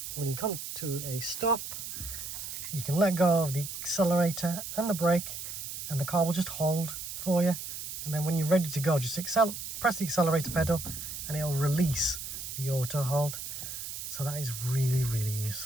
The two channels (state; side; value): noise; right; hiss, 7 dB below the sound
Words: when you come to a stop, you can let go of the accelerator and the brake and the car will just hold for you, and then when you're ready to go, just press the accelerator pedal and it'll release the auto hold. So that is really, really